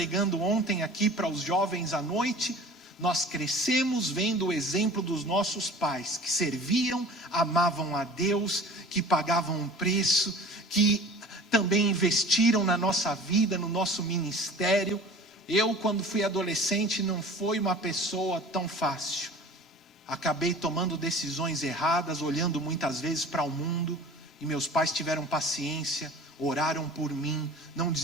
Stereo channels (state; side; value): normal; both; correlation 0.42